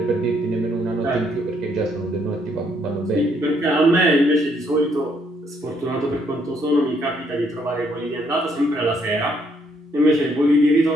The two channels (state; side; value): normal; both; correlation 0.70